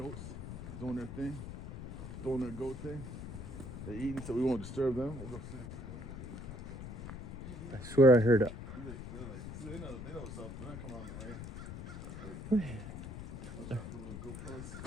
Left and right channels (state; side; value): noise; left; rumble, 9 dB below the sound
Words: doing their thing, doing their goat thing. They're eating, so we won't disturb them. We'll go see. I swear I heard it. They know what's up. They're not coming on the rain. Let's try to put a little goat